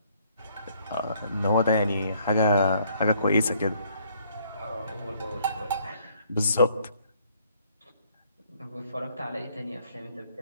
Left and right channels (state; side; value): inverted; both; correlation -0.65